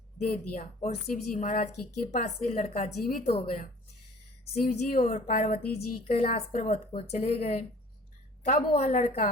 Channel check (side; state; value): both; normal; correlation 0.49